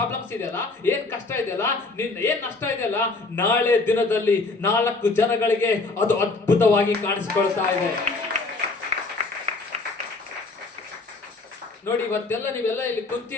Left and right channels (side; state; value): right; quieter; 3.6 dB